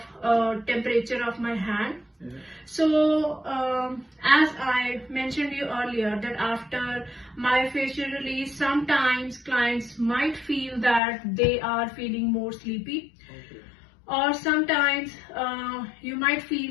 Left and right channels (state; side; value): drops out; right; at 11.0 s